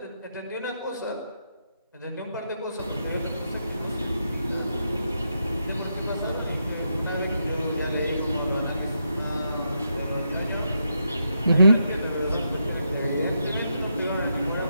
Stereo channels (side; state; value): both; inverted; correlation -0.82